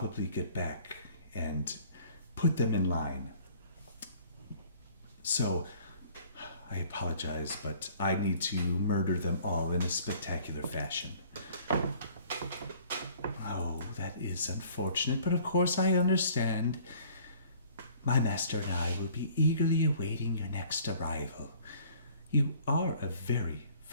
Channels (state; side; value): inverted; both; correlation -0.54